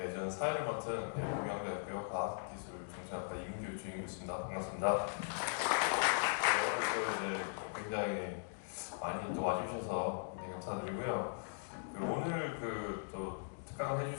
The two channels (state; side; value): silent; right; digital silence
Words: 저는 사회를 맡은 동양대학교 과학기술정책학과 이민규 주임이었습니다. 반갑습니다. 네, 또 이제 굉장히 많이 또 와주셔서 굉장히 감사드리고요. 오늘 또 특강을